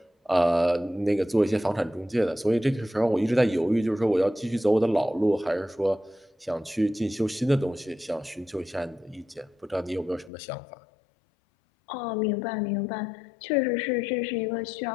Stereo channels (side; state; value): right; drops out; at 10.3 s